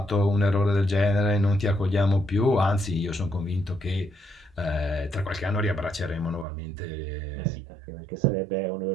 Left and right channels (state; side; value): drops out; left; at 6.5 s